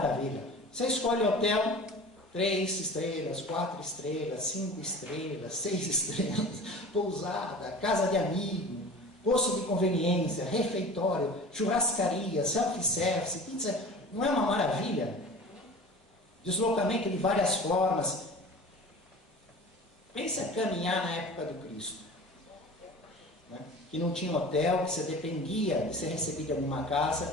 Você escolhe hotel, 3 estrelas, 4 estrelas, 5 estrelas, 6 estrelas, pousada, casa de amigo, posto de conveniência, refeitório, churrascaria, self-service, pizza. Não é uma maravilha? Deslocamento de várias formas. Pensa caminhar na época do Cristo, né? Que não tinha hotel, que você dependia de ser recebido em alguma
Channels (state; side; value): normal; both; correlation 0.39